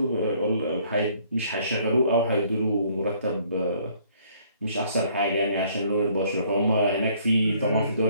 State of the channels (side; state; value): both; inverted; correlation -0.62